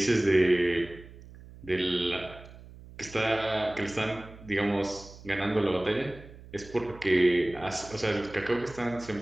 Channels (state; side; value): noise; right; hum, 18 dB below the sound